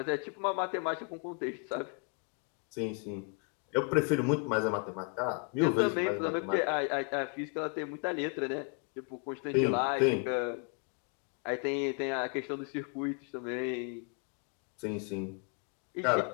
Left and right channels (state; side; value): quieter; right; 37.5 dB